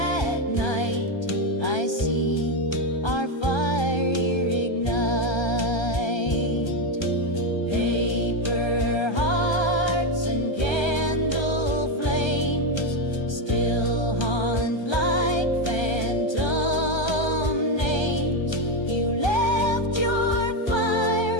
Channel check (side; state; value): right; late; 1.3 ms